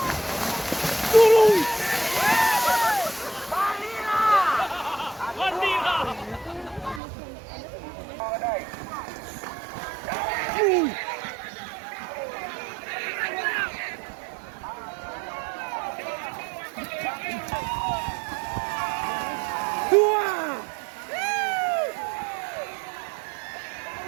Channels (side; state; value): left; drops out; at 7.0 s